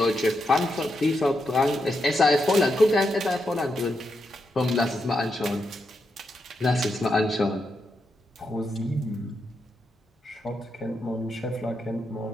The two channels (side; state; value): both; normal; correlation 0.84